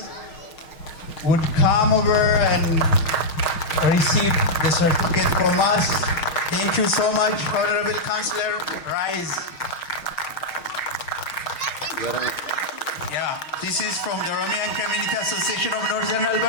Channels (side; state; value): right; late; 6.5 ms